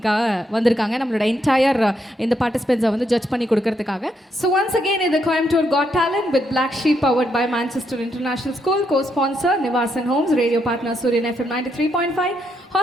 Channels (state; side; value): normal; both; correlation 0.78